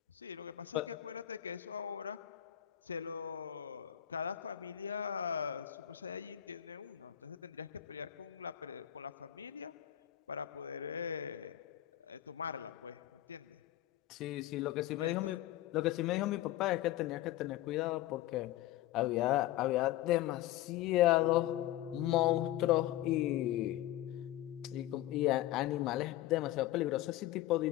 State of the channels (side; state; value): right; quieter; 13.6 dB